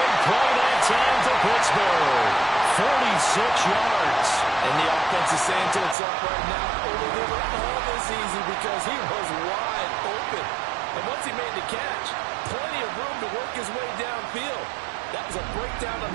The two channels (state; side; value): drops out; left; at 6.0 s